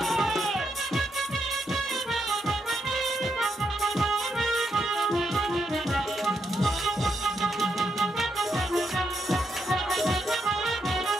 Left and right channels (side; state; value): both; normal; correlation 0.81